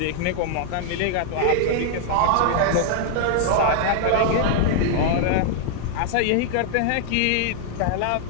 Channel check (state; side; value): different; both; correlation -0.01